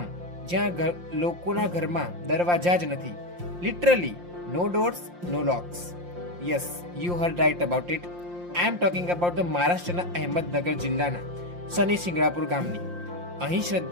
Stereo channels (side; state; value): left; late; 5.7 ms